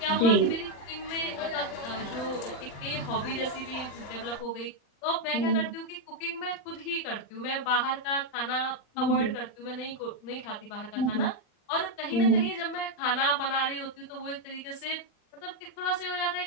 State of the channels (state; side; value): late; right; 39 ms